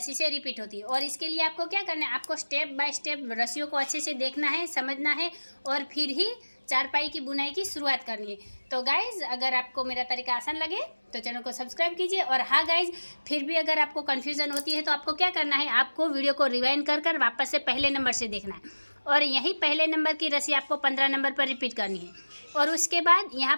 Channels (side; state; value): both; inverted; correlation -1.00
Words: से रिपीट होती है। और इसके लिए आपको क्या करना है, आपको स्टेप बाय स्टेप रस्सियों को अच्छे से देखना है, समझना है और फिर ही चारपाई की बुनाई की शुरुआत करनी है। तो गाइज़ अगर आपको मेरा तरीका आसान लगे तो चैनल को सब्सक्राइब कीजिए। और हाँ गाइज़, फिर भी अगर आपको कन्फ्यूज़न होती है तो आपको क्या करना है, आपको वीडियो को रिवाइंड कर वापस से पहले नंबर से देखना है और यही पहले नंबर की रस्सी आपको 15 नंबर पर रिपीट करनी है और उसके बाद